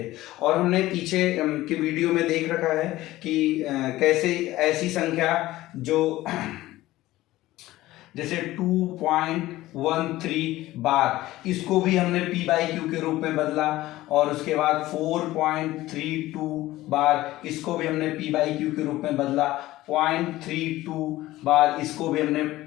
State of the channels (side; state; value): right; quieter; 16.7 dB